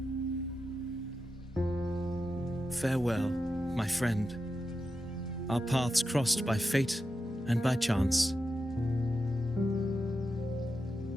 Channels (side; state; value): both; normal; correlation 0.89